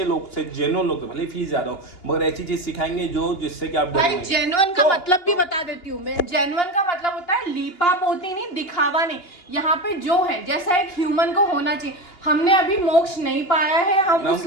लोग से, जेन्युइन लोग, भले फीस ज्यादा हो मगर ऐसी चीज सिखाएंगे जो जिससे कि आप भाई जेन्युइन का मतलब भी बता देती हूँ मैं। जेन्युइन का मतलब होता है लीपा पोती नहीं, दिखावा नहीं। यहाँ पे जो है जैसा एक ह्यूमन को होना चाहिए, हमने अभी मोक्ष नहीं पाया है, हम उस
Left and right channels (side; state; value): right; late; 2.8 ms